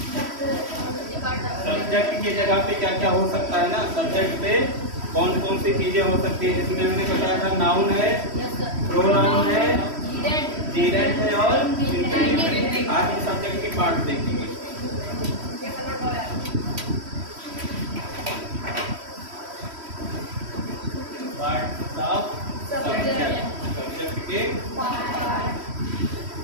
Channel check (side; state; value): left; late; 3.1 ms